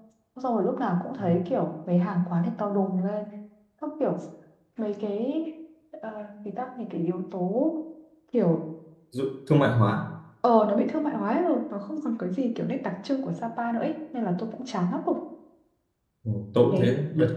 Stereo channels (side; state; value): both; identical; correlation 1.00